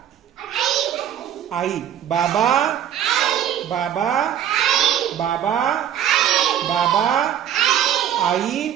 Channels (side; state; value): left; quieter; 10.1 dB